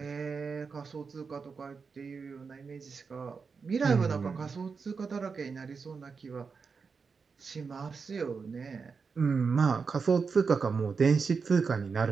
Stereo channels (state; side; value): quieter; left; 5.2 dB